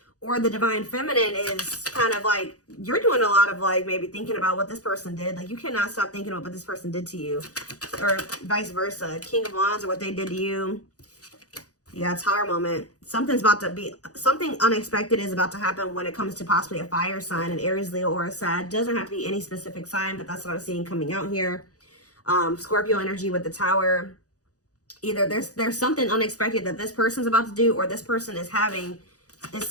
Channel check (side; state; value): right; late; 0.67 ms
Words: or the Divine Feminine is kind of like, you're doing a lot of like maybe thinking about what this person did. Like you cannot stop thinking about what this person did to you, or vice versa. King of Wands or what they did to you. Yeah, Tower moment. Something unexpected is about to happen when it comes to possibly a fire sign, an Aries, Leo, or a Sag. Doesn't have to be any specific sign, but that's what I'm seeing coming out here. Scorpio energy with the Tower. Either there's something unexpected that this person's about to do, or this person is having,